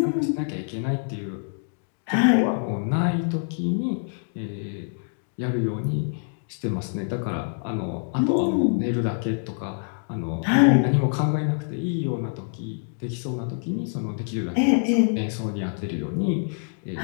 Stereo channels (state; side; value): silent; right; 57 dB below the other